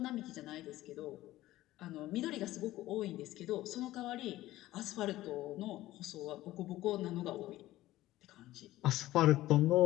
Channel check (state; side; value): quieter; right; 16.0 dB